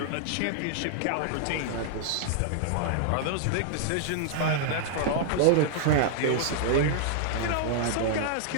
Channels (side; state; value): both; different; correlation -0.01